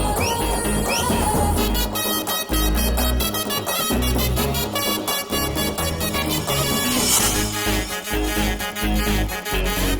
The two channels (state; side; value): identical; both; correlation 1.00